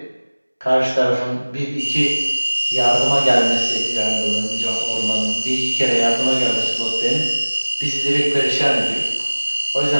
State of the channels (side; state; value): both; inverted; correlation -1.00